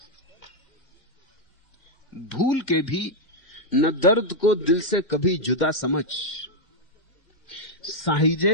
भूल के भी न दर्द को दिल से कभी जुदा समझ,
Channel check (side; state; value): right; late; 2.1 ms